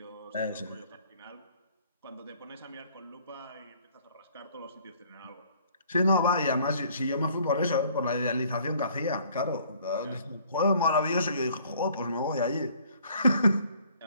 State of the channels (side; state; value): both; inverted; correlation -0.58